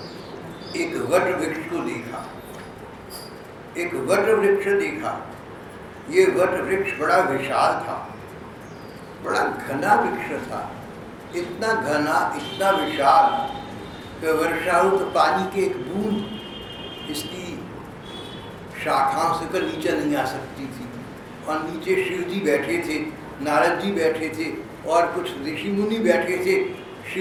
एक वट वृक्ष को देखा। एक वट वृक्ष देखा। ये वट वृक्ष बड़ा विशाल था, बड़ा घना वृक्ष था। इतना घना, इतना विशाल कि वर्षा हो तो पानी की एक बूंद इसकी शाखाओं से कर नीचे नहीं आ सकती थी। और नीचे शिव जी बैठे थे, नारद जी बैठे थे और कुछ ऋषि मुनि बैठे थे।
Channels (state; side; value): identical; both; correlation 1.00